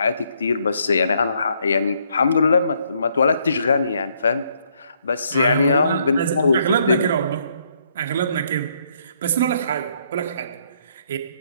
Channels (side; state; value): both; inverted; correlation -0.70